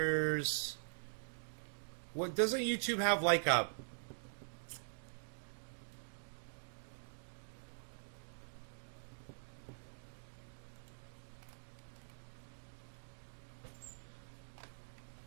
What, doesn't YouTube have like a...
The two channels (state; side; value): silent; left; digital silence